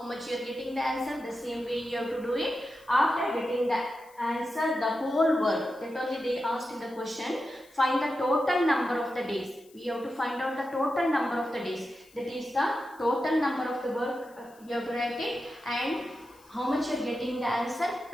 much you are getting the answer? The same way you have to do it. After getting the answer, the whole work, that only they asked in the question, find the total number of the days. We have to find out the total number of the days. That is the total number of the work you have to write it, and how much you are getting the answer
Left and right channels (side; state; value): left; noise; hiss, 27 dB below the sound